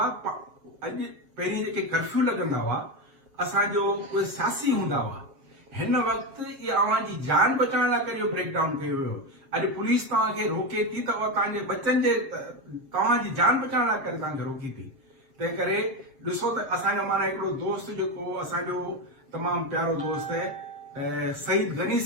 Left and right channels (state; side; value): late; left; 7.4 ms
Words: अॼु पहिरीं जेके कर्फ्यू लॻंदा हुआ असांजो उहे सियासी हूंदा हुआ, हिन वक़्तु इहा अव्हांजी जान बचाइण लाइ करे इहो ब्रेकडाउन कयो वियो। अॼु पुलिस तव्हांखे रोके थी त उहा तव्हांजे बचनि जे तव्हांजी जान बचाइण लाइ करे तव्हांखे रोकी थी। तंहिं करे ॾिसो त असांजो माना हिकिड़ो दोस्त जेको असांजो तमामु प्यारो दोस्त आहे सईद गनी